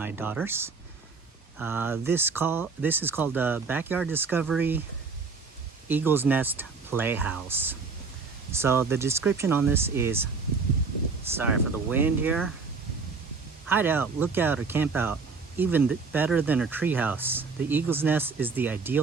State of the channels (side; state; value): left; quieter; 4.7 dB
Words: daughters. This is called the Backyard Discovery Eagle's Nest Playhouse. So the description on this is, sorry for the wind here, hide out, look out, or camp out. Even better than a treehouse, the Eagle's Nest is the